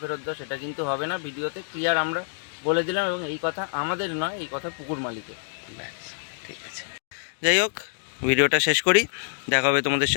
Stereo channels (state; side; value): silent; right; digital silence